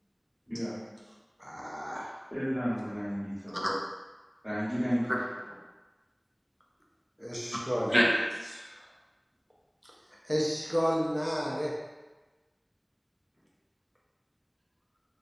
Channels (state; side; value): identical; both; correlation 1.00